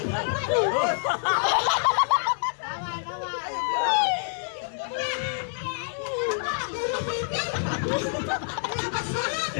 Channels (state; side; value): silent; right; digital silence